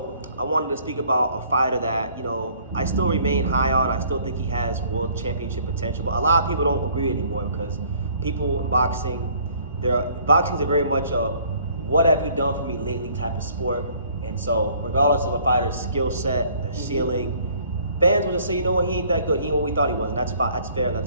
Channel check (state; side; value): inverted; both; correlation -0.59